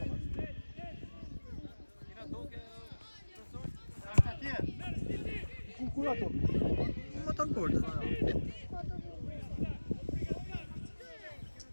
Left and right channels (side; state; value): both; inverted; correlation -1.00